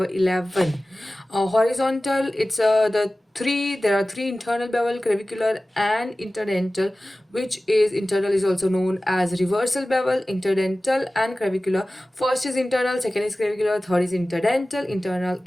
11, horizontal, it's there are three internal bevel, clavicular and interdental, which is internal is also known as reversal bevel, interdental and clavicular. First is internal, second is clavicular, third is interdental. Internal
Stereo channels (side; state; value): both; normal; correlation 0.97